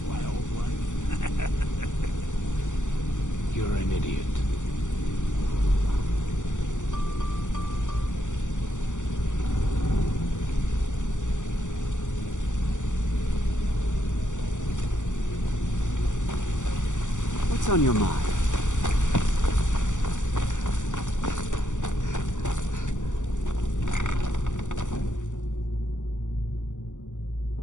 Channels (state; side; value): late; right; 0.86 ms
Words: wildlife? You're an idiot. What's on your mind?